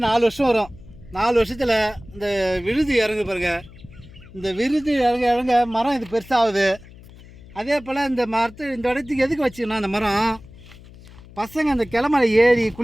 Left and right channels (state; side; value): noise; left; hum, 20 dB below the sound